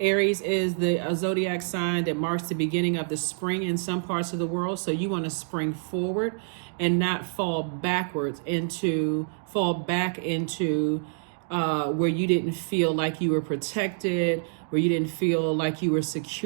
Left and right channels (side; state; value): left; silent; digital silence